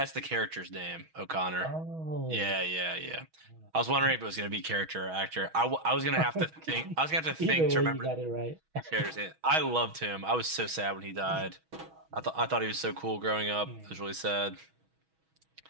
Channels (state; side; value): late; left; 6.2 ms